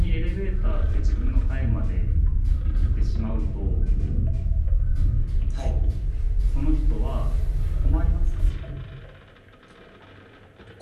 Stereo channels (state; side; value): identical; both; correlation 1.00